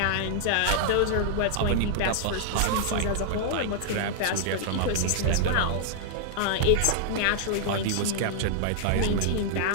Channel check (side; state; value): both; different; correlation -0.01